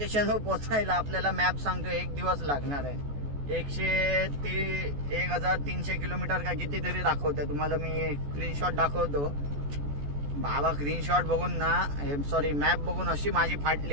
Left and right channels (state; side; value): late; left; 14 ms